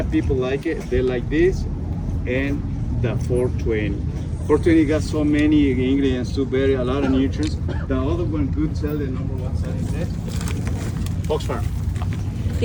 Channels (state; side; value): identical; both; correlation 1.00